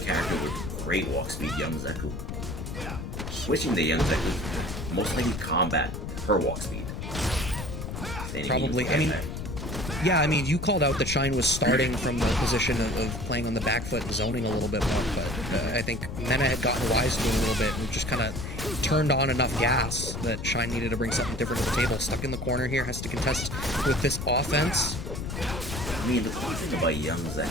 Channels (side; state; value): left; noise; rumble, 7 dB below the sound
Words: with great walk speed, Young Zeku. Switching to Young Zeku, most likely combat her walk speed. Probably. I mean, yeah, I mean, you called out that Shine was starting from the position of playing on the back foot and zoning a little bit more, but I think Mena had gotten wise to it a little bit and just kind of turned on enough gas that Shine needed to bring something different to the table. Stuck in the corner here, has to contest with this offense. I mean, the cool thing about Young